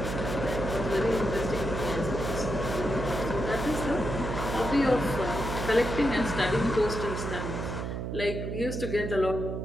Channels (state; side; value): noise; right; hum, 4 dB below the sound